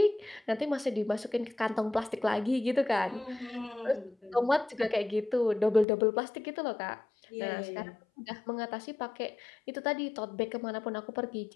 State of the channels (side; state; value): right; drops out; at 5.9 s